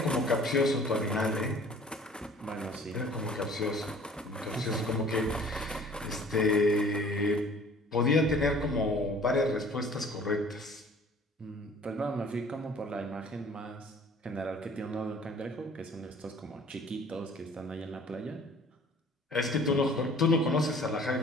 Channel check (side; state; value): both; normal; correlation 0.50